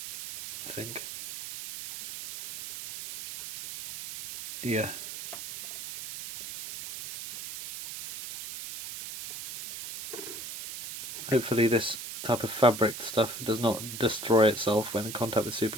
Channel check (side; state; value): right; noise; hiss, 9 dB below the sound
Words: I think. Yeah. Hopefully this type of fabric stuff does not destroy itself when in contact with